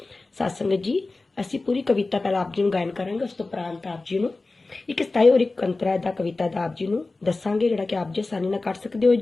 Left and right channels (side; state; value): right; quieter; 3.4 dB